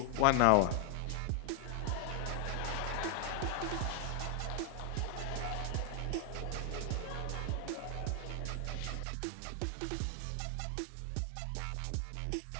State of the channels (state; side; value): drops out; left; at 9.1 s